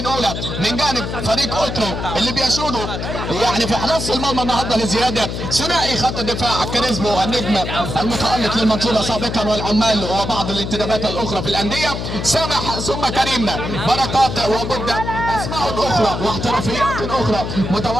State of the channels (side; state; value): left; noise; hum, 5 dB below the sound